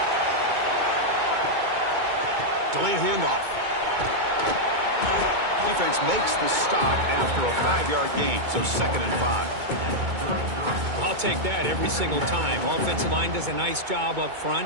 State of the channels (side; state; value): left; late; 2.2 ms